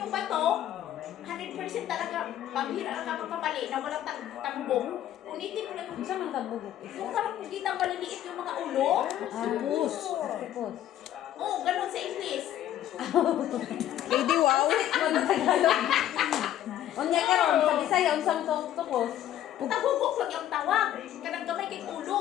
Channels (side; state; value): right; quieter; 11.9 dB